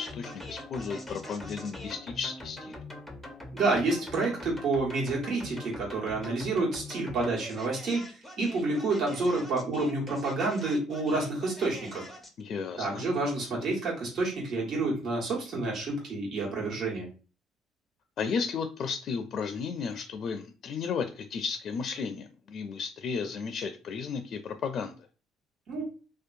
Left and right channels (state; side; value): normal; both; correlation 0.63